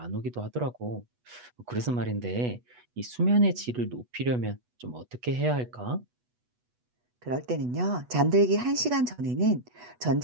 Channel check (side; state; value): left; late; 8.2 ms